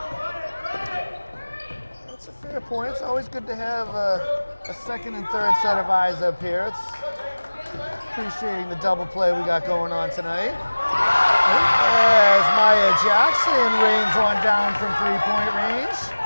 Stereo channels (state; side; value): inverted; both; correlation -1.00